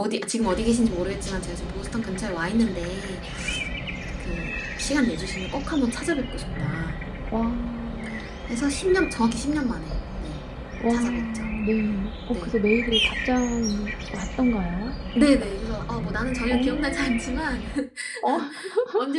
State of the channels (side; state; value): both; identical; correlation 1.00